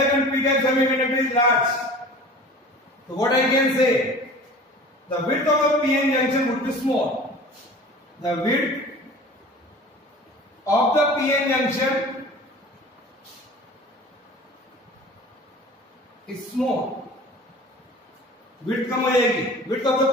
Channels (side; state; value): both; normal; correlation 0.41